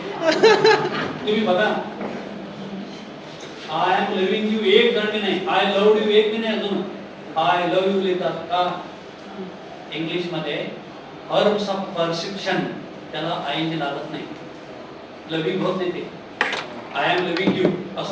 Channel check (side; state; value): both; identical; correlation 1.00